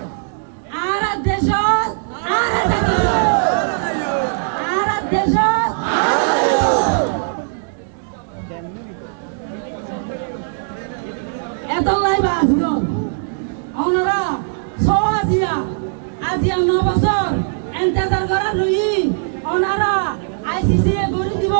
আর দেশ এত লাইবা আসল ওনারা আজিয়া 9 বছর এন্তেজার করা রই ওনারা আইসিসি এ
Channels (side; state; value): left; silent; digital silence